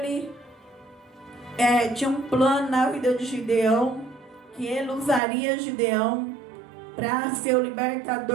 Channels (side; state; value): left; drops out; at 5.2 s